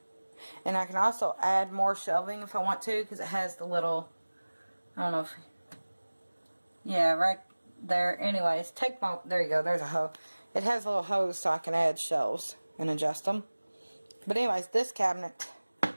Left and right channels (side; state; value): both; inverted; correlation -1.00